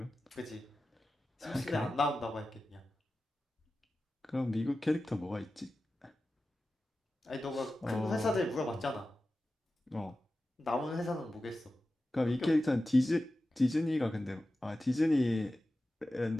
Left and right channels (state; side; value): normal; both; correlation 0.94